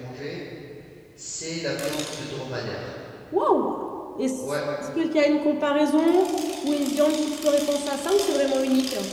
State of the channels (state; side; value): identical; both; correlation 1.00